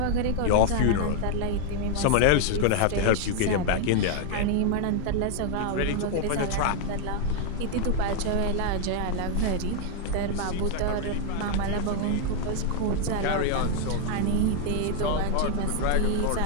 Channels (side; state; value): both; different; correlation 0.00